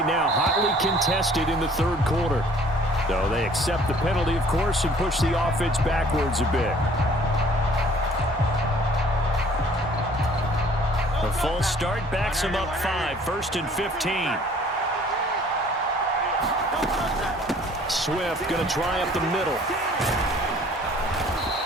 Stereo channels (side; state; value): both; normal; correlation 0.55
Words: now. Hotly contested in the 3rd quarter. So they accept the penalty, of course, and push the offense backwards a bit. A false start backs him up 5. 1st and 15. Swift going to try up the middle.